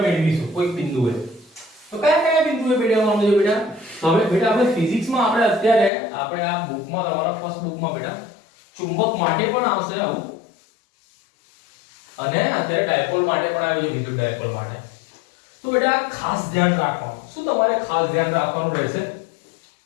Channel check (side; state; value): right; drops out; at 5.9 s